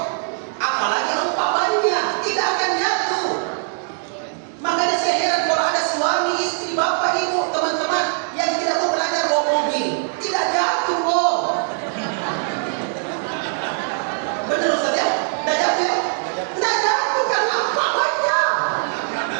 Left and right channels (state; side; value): silent; left; 65 dB below the other